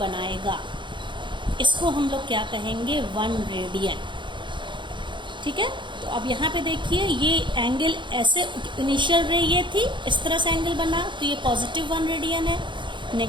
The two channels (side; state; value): left; late; 0.23 ms